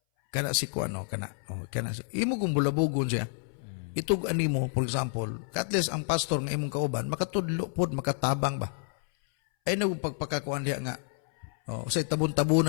Kana si kuan no, kana imo kung bulabugon siya. Itug ani mo, for example, at least ang pastor nga imong kauban makatudlo pod, makatabang ba. Ay nag pagpakakuan diha nga. Say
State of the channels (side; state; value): right; silent; 58 dB below the other